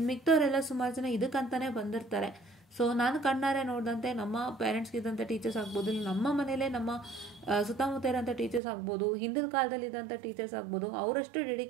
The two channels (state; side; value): drops out; left; at 8.6 s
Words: ಮಿಕ್ದವರೆಲ್ಲ ಸುಮಾರು ಜನ ಇದಕ್ಕಂತಾನೆ ಬಂದಿರ್ತಾರೆ. ಸೊ ನಾನು ಕಣ್ಣಾರೆ ನೋಡಿದಂತೆ ನಮ್ಮ ಪೇರೆಂಟ್ಸ್ಗೆ ಇದ್ದಂಥ ಟೀಚರ್ಸ್ ಆಗ್ಬೋದು, ನಮ್ಮ ಮನೇಲೆ ನಮ್ಮ ಸುತ್ತಮುತ್ತ ಇರೋಂಥ ಟೀಚರ್ಸ್ ಆಗ್ಬೋದು, ಹಿಂದಿನ ಕಾಲದಲ್ಲಿ ಇದ್ದಂಥ ಟೀಚರ್ಸ್ ಆಗ್ಬೋದು, ಅವರಷ್ಟು